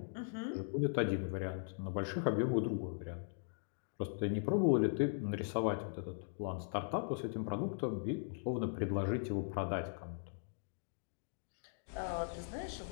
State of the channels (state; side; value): silent; right; digital silence